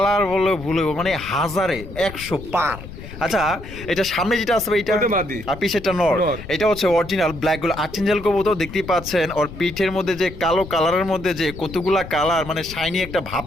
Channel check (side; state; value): left; noise; rumble, 13 dB below the sound